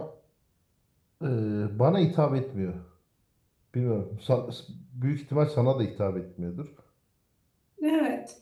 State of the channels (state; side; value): identical; both; correlation 1.00